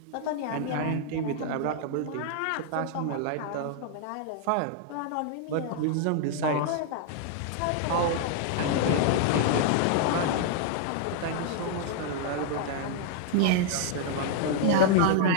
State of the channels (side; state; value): both; different; correlation 0.00